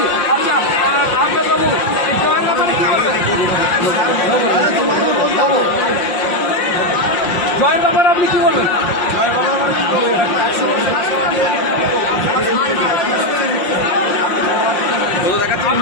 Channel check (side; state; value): right; late; 5.7 ms